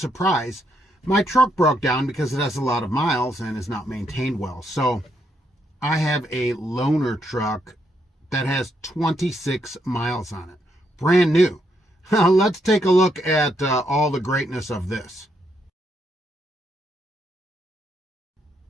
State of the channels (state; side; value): normal; both; correlation 0.77